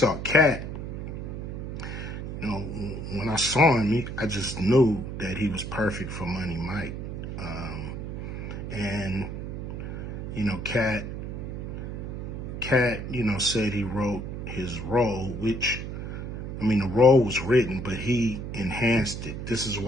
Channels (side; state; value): right; noise; hum, 6 dB below the sound